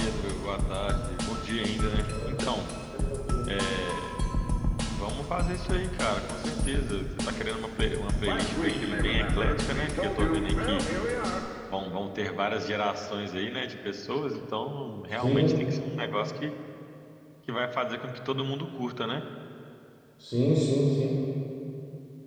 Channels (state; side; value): identical; both; correlation 1.00